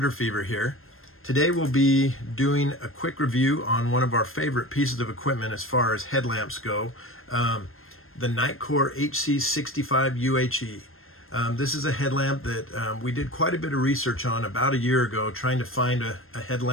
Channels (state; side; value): late; right; 0.61 ms